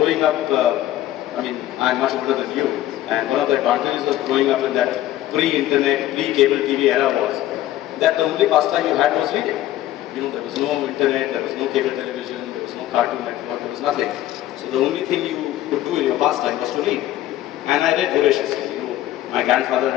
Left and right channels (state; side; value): quieter; right; 13.8 dB